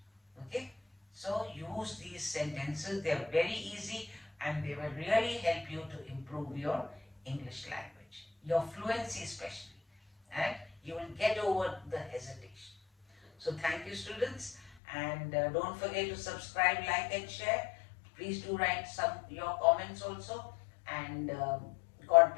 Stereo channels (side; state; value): right; drops out; at 14.7 s